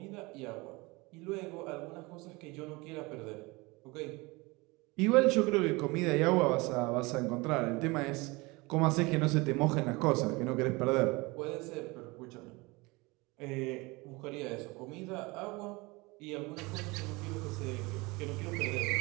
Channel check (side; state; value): left; quieter; 24.4 dB